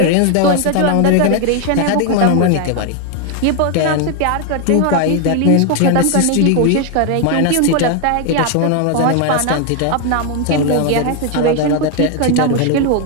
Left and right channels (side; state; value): both; different; correlation 0.01